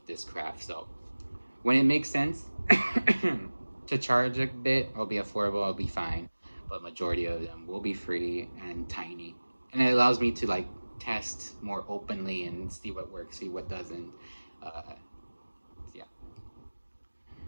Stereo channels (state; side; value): inverted; both; correlation -1.00